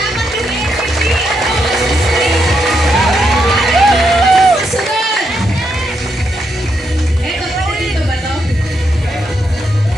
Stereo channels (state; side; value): normal; both; correlation 0.80